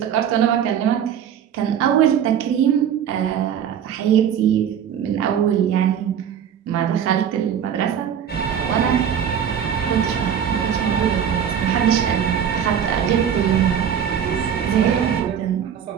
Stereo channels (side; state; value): left; quieter; 8.7 dB